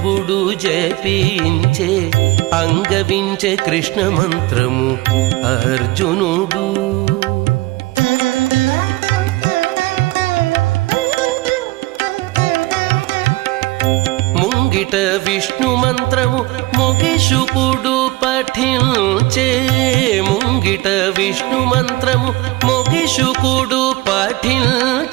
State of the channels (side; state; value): left; quieter; 20.2 dB